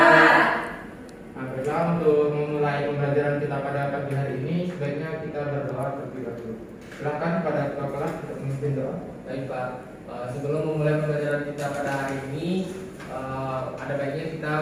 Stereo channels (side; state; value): both; identical; correlation 1.00